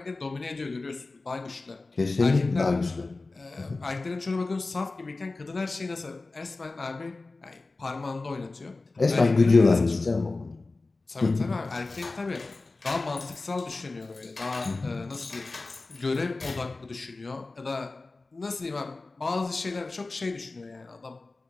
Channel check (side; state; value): right; quieter; 3.4 dB